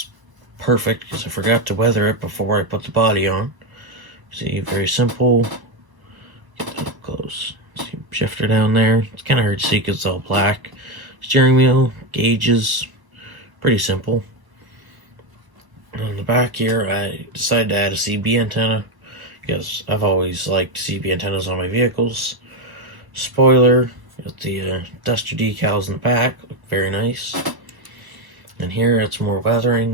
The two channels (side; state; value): left; late; 1.0 ms